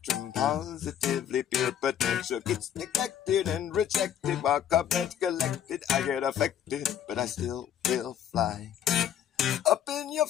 Positively pure potential gets neglected and rejected. While comments collected, I get affected, but I still will fly. Up in your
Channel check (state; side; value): quieter; right; 9.7 dB